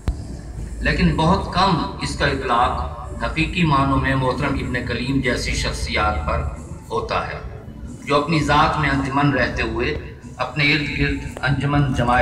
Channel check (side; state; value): both; identical; correlation 1.00